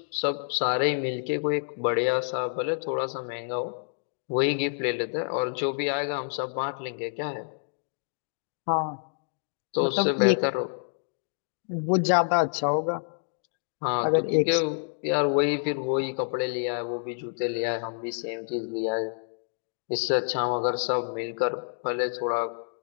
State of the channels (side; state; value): right; silent; digital silence